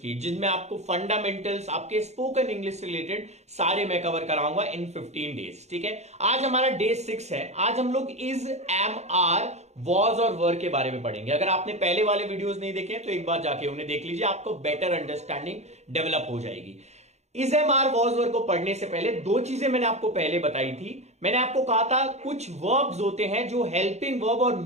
जिसमें आपको फंडामेंटल्स आपके स्पोकन इंग्लिश से रिलेटेड सारे मैं कवर कराऊंगा इन 15 डेज। ठीक है, आज हमारा डे 6 है। आज हम लोग इज, एम, आर, वॉज और वर के बारे में पढ़ेंगे। अगर आपने पहले वाले वीडियोस नहीं देखे तो एक बार जाके उन्हें देख लीजिए, आपको बेटर अंडरस्टैंडिंग डेवलप हो जाएगी। इज, एम, आर, वॉज, वर को पढ़ने से पहले दो चीजें मैंने आपको पहले बताई थी। मैंने आपको कहा था कुछ वर्ब्स होते हैं जो हेल्पिंग वर्ब और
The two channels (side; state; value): left; late; 0.32 ms